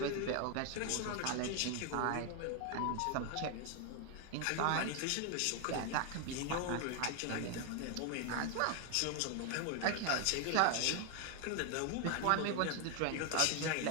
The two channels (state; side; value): different; both; correlation 0.00